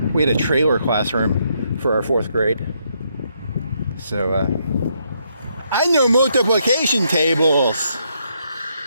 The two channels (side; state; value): both; inverted; correlation -0.75